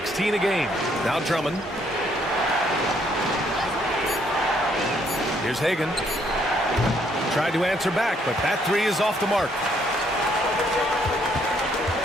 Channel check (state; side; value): normal; both; correlation 0.69